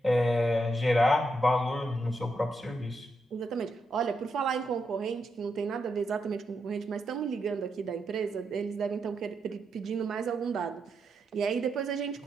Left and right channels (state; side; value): normal; both; correlation 0.82